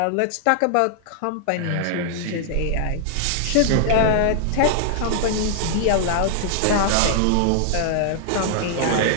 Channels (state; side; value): different; both; correlation -0.01